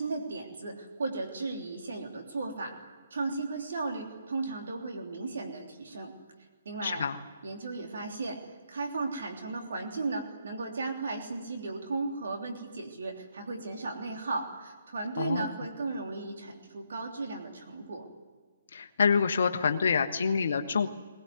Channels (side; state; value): both; inverted; correlation -0.77